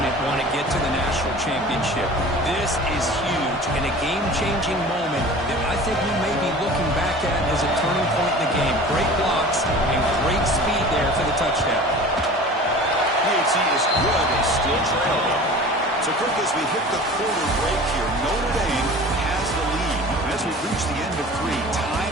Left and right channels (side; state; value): both; normal; correlation 0.40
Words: want to get to the national championship? This is huge and a game-changing moment that I think we may be looking back at as a turning point in the game. Great blocks and great speed there for the touchdown. PHC is good. They still trail, though. So, quick as we hit the quarter break here, Notre Dame has the lead. As we reach the end of 3,